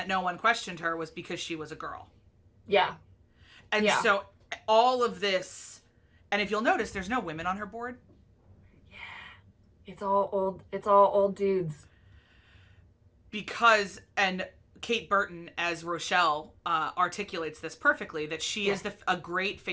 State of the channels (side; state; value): both; identical; correlation 1.00